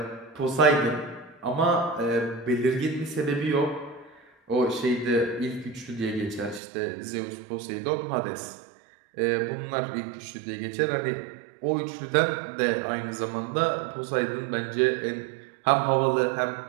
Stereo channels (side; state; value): left; drops out; at 6.6 s